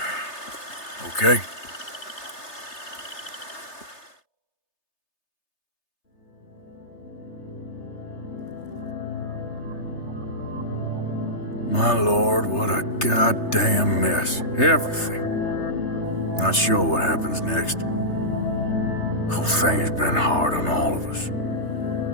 Okay. My lord, what a goddamn mess. Everything. Not sure what happens next. Whole thing has been hard on all of us.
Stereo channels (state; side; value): late; right; 3.3 ms